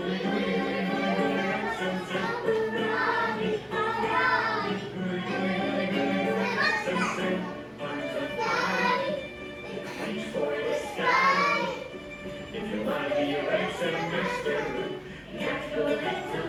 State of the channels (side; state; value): both; identical; correlation 1.00